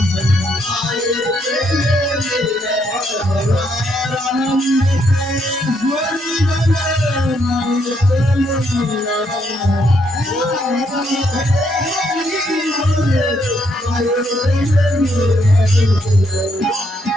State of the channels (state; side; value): normal; both; correlation 0.74